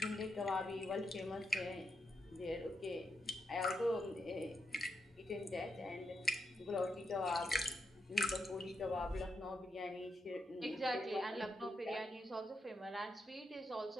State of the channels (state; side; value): normal; both; correlation 0.83